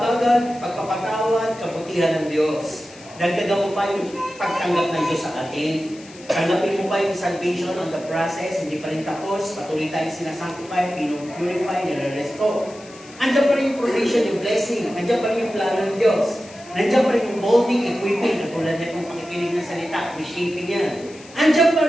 pagpapatawad, kabutihan ng Diyos. Dagdagan mo pa yung pagtanggap ng Diyos sa atin. Tanggapin mo pa yung salvation on the process, hindi pa rin tapos, patuloy tayong sinasanctify, pinupurify, nire-restore. Andiyan pa rin yung provision, yung blessing, andiyan pa rin yung plano ng Diyos. Nandiyan pa rin yung molding, equipping, katulad na itong pakikinig ng salita, reshaping yan. Andiyan pa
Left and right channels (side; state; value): left; noise; hiss, 21 dB below the sound